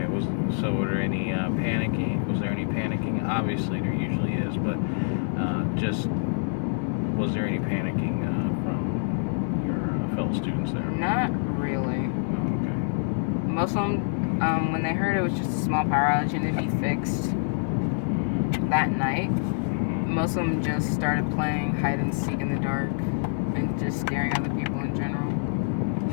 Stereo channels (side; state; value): right; silent; digital silence